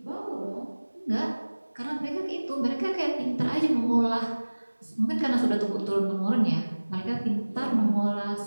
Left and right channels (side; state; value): both; inverted; correlation -1.00